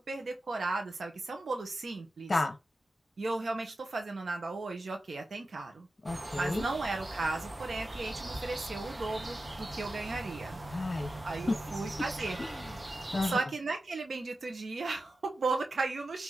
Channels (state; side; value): normal; both; correlation 0.92